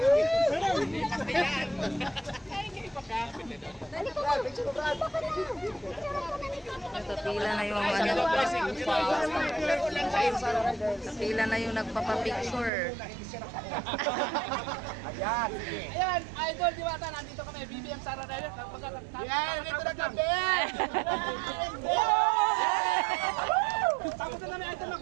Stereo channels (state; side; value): drops out; left; at 12.7 s